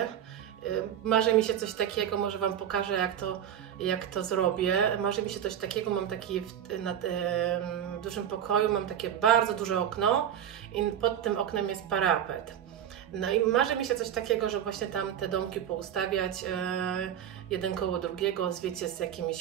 Marzy mi się coś takiego, może Wam pokażę, jak to zrobię. Marzy mi się coś takiego, mam taki w dużym pokoju, mam takie bardzo duże okno i pod tym oknem jest parapet. No i marzy mi się coś takiego, że właśnie tam te domki poustawiać jeden koło drugiego, wiecie, z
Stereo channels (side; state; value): left; quieter; 9.9 dB